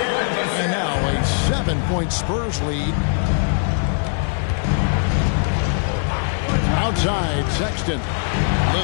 And now a 7-point Spurs lead. Outside, Sexton.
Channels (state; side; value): silent; right; digital silence